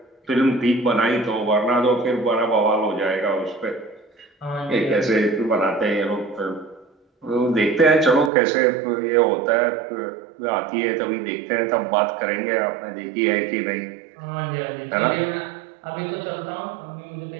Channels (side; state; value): left; drops out; at 8.3 s